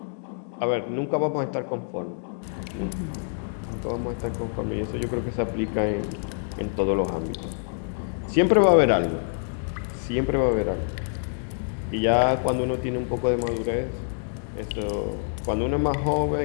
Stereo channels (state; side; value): silent; right; digital silence